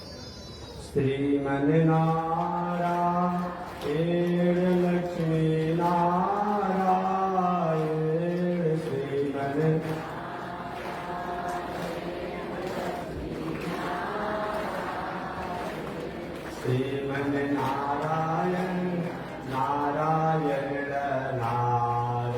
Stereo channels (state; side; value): identical; both; correlation 1.00